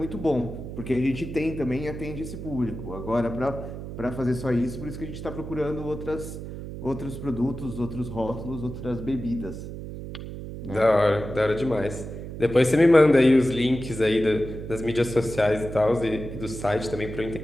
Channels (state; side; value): noise; right; hum, 9 dB below the sound